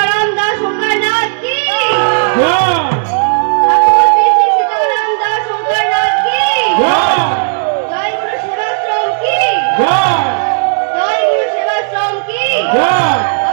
দাস শঙ্করনাথ কি জয়! ঠাকুর শ্রী শ্রী সীতারাম দাস শঙ্করনাথ কি জয়! জয় গুরু সেবাশ্রম কি জয়! জয় গুরু সেবাশ্রম কি জয়!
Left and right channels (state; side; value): silent; left; digital silence